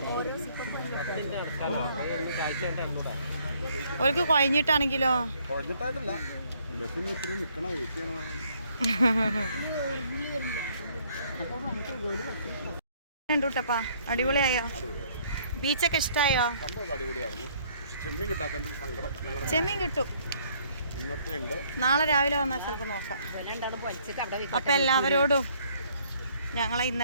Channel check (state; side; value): inverted; both; correlation -0.64